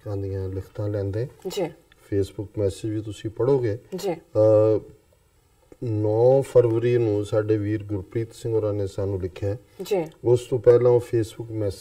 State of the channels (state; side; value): identical; both; correlation 1.00